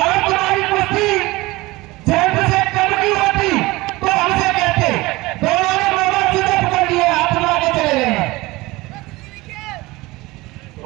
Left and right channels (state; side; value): quieter; left; 21.0 dB